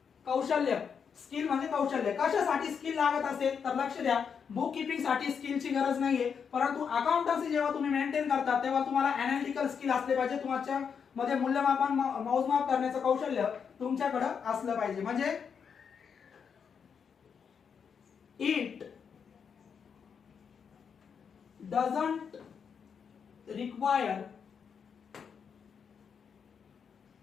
कौशल्य. स्किल म्हणजे कौशल्य. कशासाठी स्किल लागत असेल तर लक्ष द्या, बुक किपिंग साठी स्किलची गरज नाहीये, परंतु अकाउंटन्सी जेव्हा तुम्ही मेंटेन करता तेव्हा तुम्हाला अनालिटिकल स्किल असले पाहिजे. तुमच्या मध्ये मूल्यमापन मोजमाप करण्याचं कौशल्य तुमच्याकडे असलं पाहिजे. म्हणजे it doesn't require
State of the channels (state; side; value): quieter; right; 6.7 dB